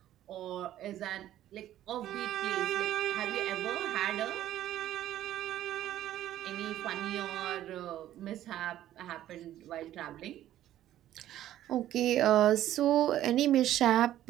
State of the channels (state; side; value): quieter; left; 12.8 dB